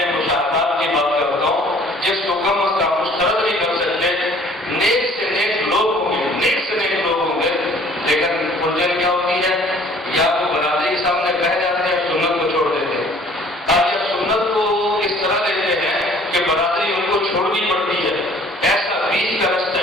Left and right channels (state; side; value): normal; both; correlation 0.54